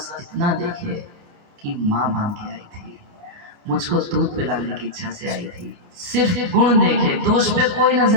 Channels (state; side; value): late; left; 28 ms